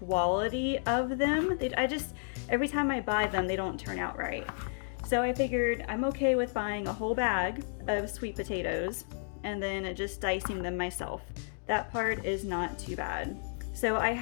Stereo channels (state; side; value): silent; right; digital silence